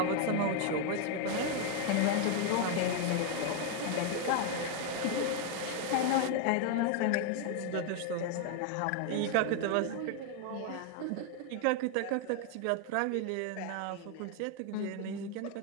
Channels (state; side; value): different; both; correlation 0.01